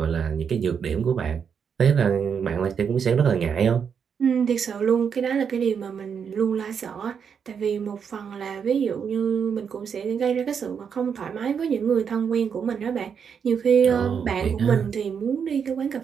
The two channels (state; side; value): quieter; left; 7.0 dB